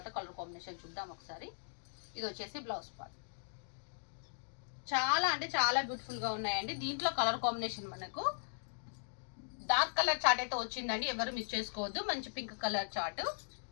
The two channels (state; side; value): silent; right; digital silence